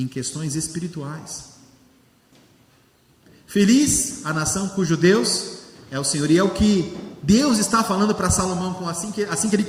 questões espirituais. Feliz a nação cujo Deus é o Senhor. E é o que Deus está falando para Salomão assim que ele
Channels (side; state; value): both; identical; correlation 1.00